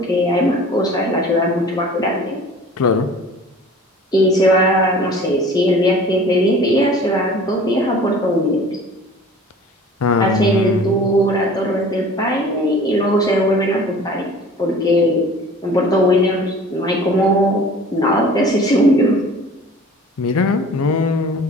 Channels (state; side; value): normal; both; correlation 0.45